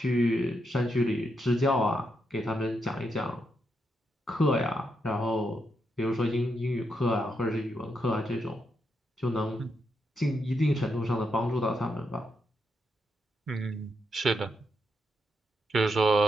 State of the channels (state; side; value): normal; both; correlation 0.81